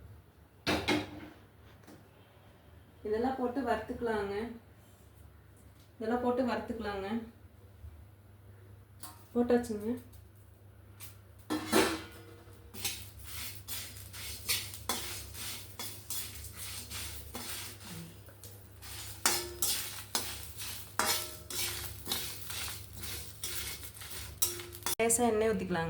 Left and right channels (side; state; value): both; identical; correlation 1.00